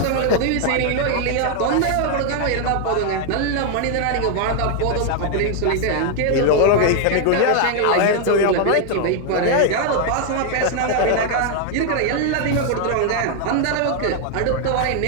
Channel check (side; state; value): both; different; correlation 0.00